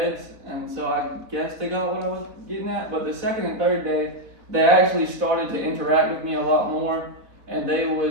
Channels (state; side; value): late; left; 3.9 ms